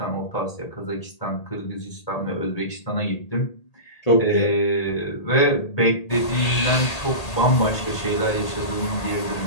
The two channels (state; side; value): late; right; 1.8 ms